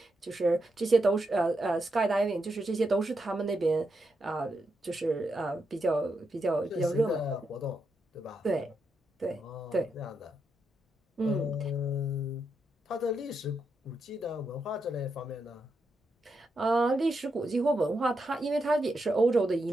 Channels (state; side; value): normal; both; correlation 0.83